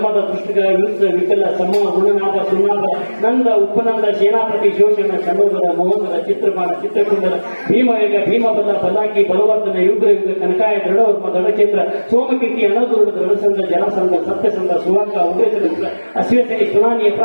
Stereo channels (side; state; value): both; inverted; correlation -1.00